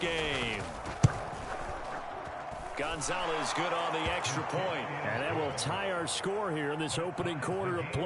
Gonzalez good on the extra point. And that will tie our score here in this opening quarter of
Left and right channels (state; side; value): identical; both; correlation 1.00